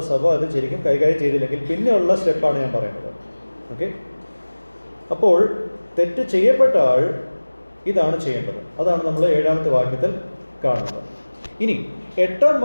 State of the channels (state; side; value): inverted; both; correlation -1.00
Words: സഭ അത് ശരിക്കും കൈകാര്യം ചെയ്തില്ലെങ്കിൽ പിന്നെയുള്ള സ്റ്റെപ്പാണ് ഞാൻ പറയുന്നത്. ഓക്കെ, അപ്പോൾ തെറ്റ് ചെയ്യപ്പെട്ട ആൾ ഇതാണ് ചെയ്യേണ്ടത്. അതാണ് നമ്മൾ 7ാമത്തെ വാക്യത്തിൽ കാണുന്നത്. ഇനി 8ാം